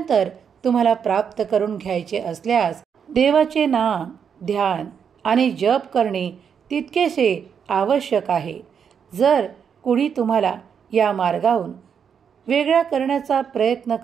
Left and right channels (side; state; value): left; quieter; 7.3 dB